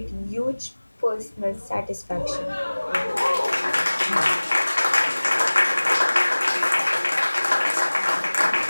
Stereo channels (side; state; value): both; inverted; correlation -1.00